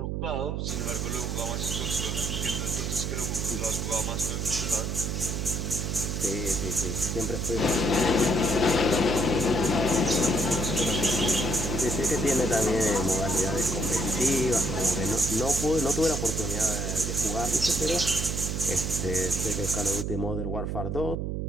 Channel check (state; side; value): noise; right; hum, 2 dB below the sound